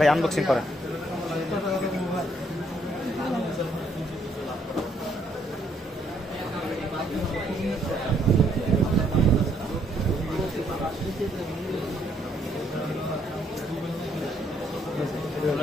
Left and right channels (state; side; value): normal; both; correlation 0.69